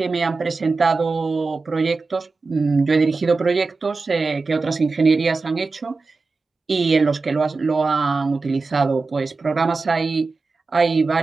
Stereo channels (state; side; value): quieter; left; 4.0 dB